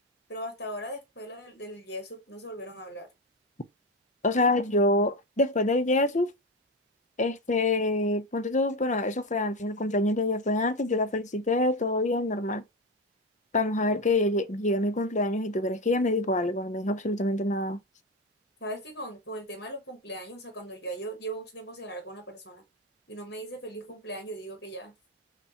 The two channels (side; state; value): both; normal; correlation 0.16